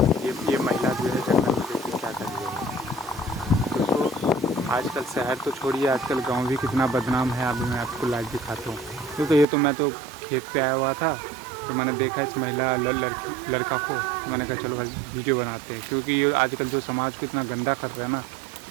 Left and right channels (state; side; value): drops out; left; at 9.5 s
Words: ये महिला जो है जंगल में देखिए क्या कर रही है दोस्तों। आजकल शहर तो छोड़िए, आजकल गांव भी कितना बदनाम है। अभी मैं आपको लाइव दिखाता हूँ। तो मैं तो खेत पे आया हुआ था, तो मैंने देखा इस महिला लड़का को, तो मैंने कहा चलो भाई वीडियो बनाते हैं, क्योंकि ये आजकल जो समाज को इतना गंदा कर रहा है ना,